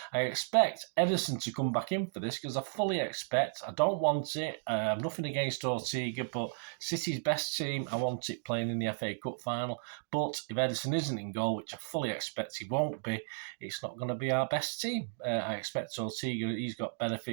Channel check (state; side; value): silent; left; digital silence